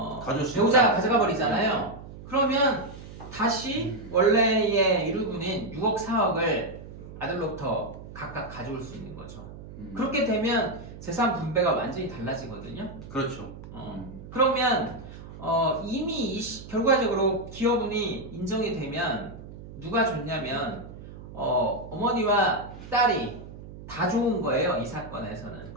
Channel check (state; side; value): noise; right; hum, 14 dB below the sound